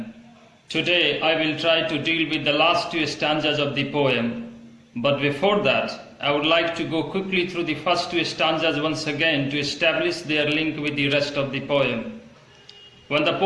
Today, I will try to deal with the last two stanzas of the poem. But before that, I would like to go quickly through the first two stanzas once again to establish their link with the rest of the poem. When the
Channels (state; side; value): identical; both; correlation 1.00